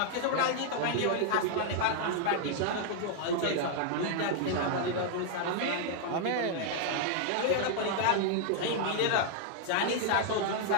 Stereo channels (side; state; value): both; different; correlation -0.01